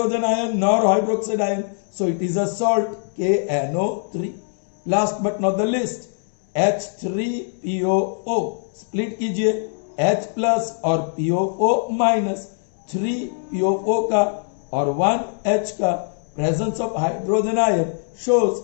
ion nor hydroxide ion, so it is a salt, KNO3. Last but not the list, H3PO4 split कीजिए, H प्लस और PO4 माइनस, 3PO4 का और 1H का, presence of hydrogen ion shows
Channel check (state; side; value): silent; right; 64 dB below the other